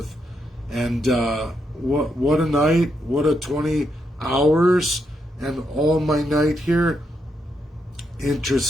And what a night, what a 20 hours, and all my night here.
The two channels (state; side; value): normal; both; correlation 0.80